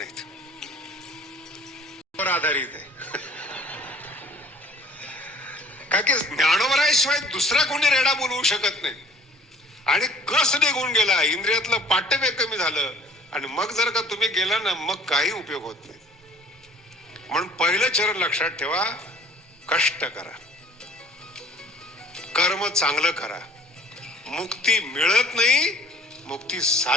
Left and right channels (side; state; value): both; normal; correlation 0.52